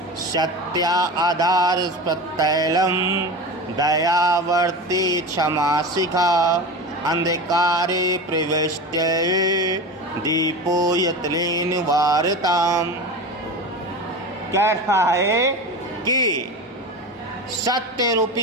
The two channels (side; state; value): both; normal; correlation 0.27